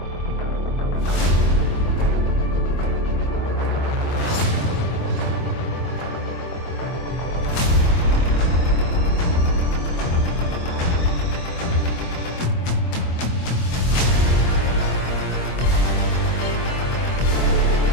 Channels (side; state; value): right; late; 24 ms